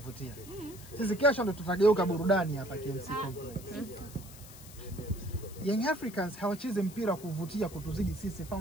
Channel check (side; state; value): left; noise; hiss, 18 dB below the sound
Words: Sisi kesho ndo tutageuka burudani hapa KMC Complex. Young Africans hawachezi mpira wa kuvutia kutuzidi sisi